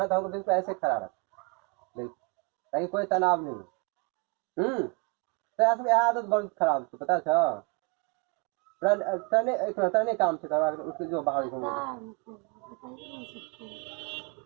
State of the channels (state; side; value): quieter; left; 31.3 dB